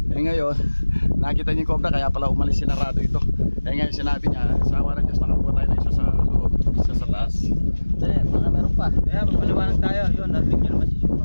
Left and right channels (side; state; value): both; inverted; correlation -1.00